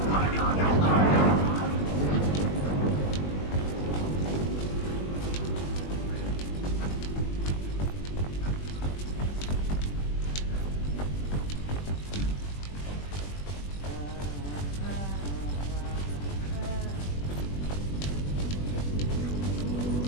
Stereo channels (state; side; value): late; right; 21 ms